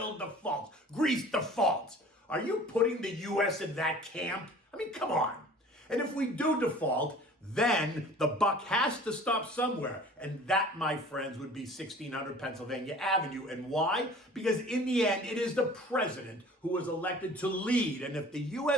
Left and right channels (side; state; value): both; normal; correlation 0.46